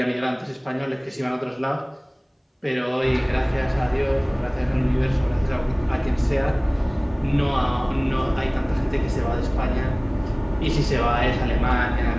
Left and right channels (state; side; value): identical; both; correlation 1.00